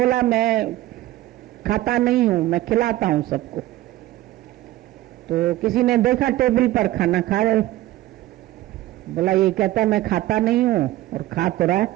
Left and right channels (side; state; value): left; quieter; 15.7 dB